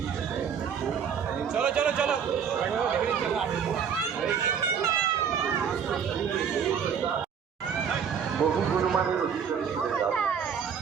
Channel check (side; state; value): left; quieter; 7.3 dB